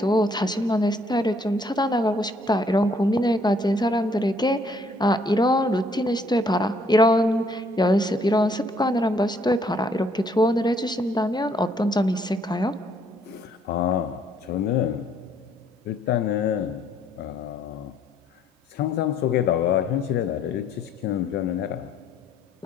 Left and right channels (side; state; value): both; normal; correlation 0.66